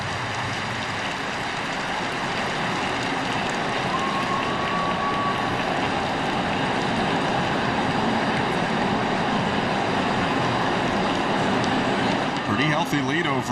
Pretty healthy lead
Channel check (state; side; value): identical; both; correlation 1.00